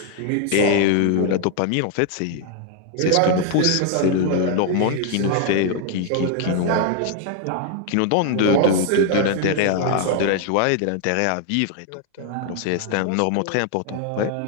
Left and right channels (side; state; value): both; different; correlation 0.00